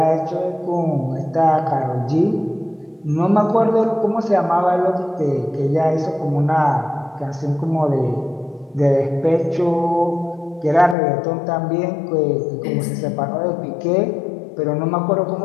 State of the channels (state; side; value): drops out; right; at 11.0 s